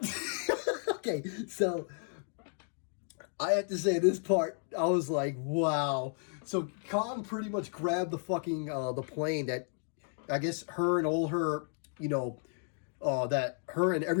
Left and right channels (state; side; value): silent; right; 56 dB below the other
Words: okay, so I have to say this part, I was like, wow. So Kong pretty much grabbed the fucking the plane that I guess her and all her, you know, that her and